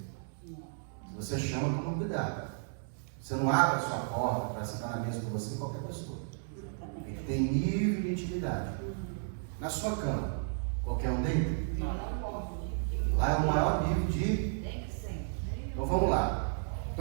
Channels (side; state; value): left; silent; digital silence